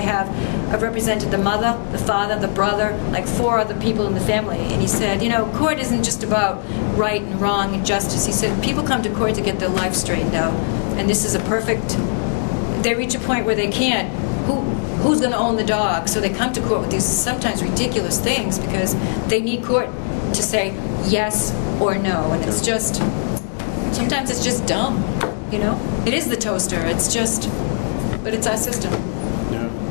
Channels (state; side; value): silent; right; digital silence